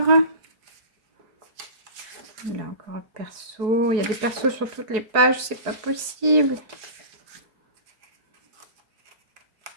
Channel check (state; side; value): late; left; 4.7 ms